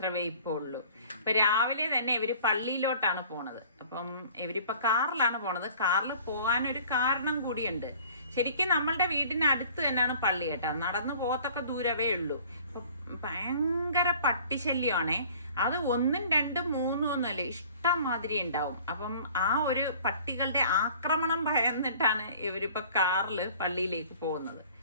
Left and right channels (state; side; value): inverted; both; correlation -0.50